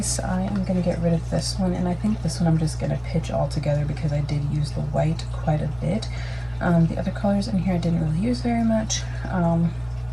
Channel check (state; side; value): identical; both; correlation 1.00